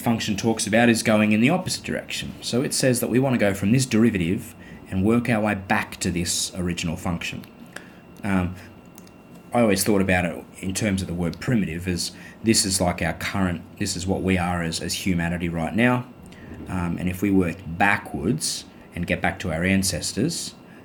talks about is going in the opposite direction. So it says that we want to go from this derivative and work our way back to this original function. I always thought about it in terms of the word primitive as this is like our current, this is what we are as humanity right now. And if we work backwards and get back to our ancestors,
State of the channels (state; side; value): identical; both; correlation 1.00